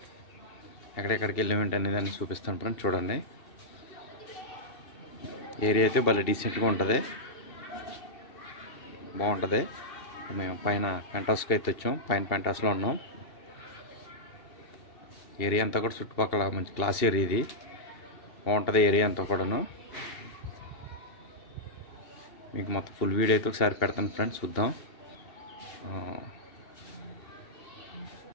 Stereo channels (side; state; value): right; late; 2.7 ms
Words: ఎక్కడెక్కడికి వెళ్ళామేంటి అనేది అన్ని చూపిస్తాను ఫ్రెండ్స్. చూడండి, ఏరియా అయితే భలే డీసెంట్గా ఉంటుంది, బాగుంటుంది. మేము పైన పెంటాస్కి అయితే వచ్చాం. పైన పెంటాస్లో ఉన్నాం. ఏరియా అంతా కూడా చుట్టుపక్కల మంచి క్లాస్ ఏరియా, ఇది బాగుంటుంది ఏరియా అంతా కూడాను. మీకు మొత్తం ఫుల్ వీడియో అయితే ఒకసారి పెడతాను ఫ్రెండ్స్, చూద్దాం.